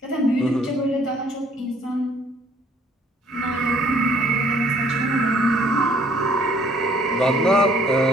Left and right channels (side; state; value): both; normal; correlation 0.60